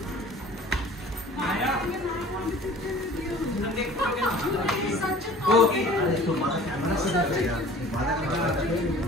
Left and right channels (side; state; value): both; normal; correlation 0.47